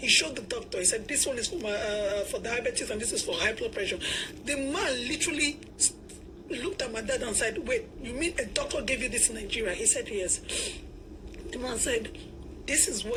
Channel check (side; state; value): both; identical; correlation 1.00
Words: showed the doctor, he said, this one is for diabetes and this is for high blood pressure. The man literally looked at my dad and said, wait, you mean a doctor gave you this in Nigeria? He said, yes. The man said, this is